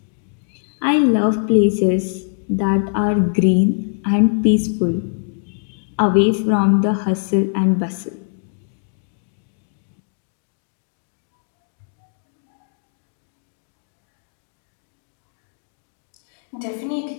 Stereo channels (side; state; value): right; silent; digital silence